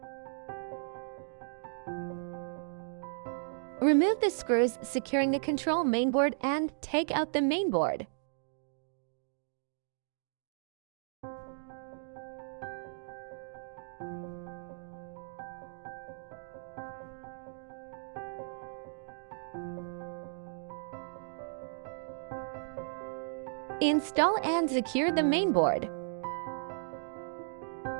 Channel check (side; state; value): left; silent; digital silence